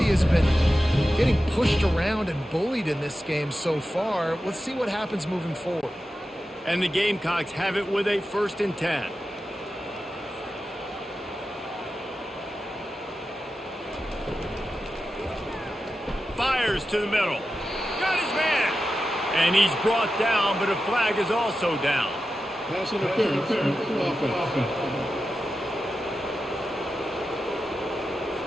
has been getting pushed around and bullied in this game so far. Let's see what happens moving forward. And the Gamecocks have it with a 1st and 10. Fires to the middle. Got his man. And he's brought down, but a flag is also down. Pass interference. Offense.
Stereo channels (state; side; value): normal; both; correlation 0.92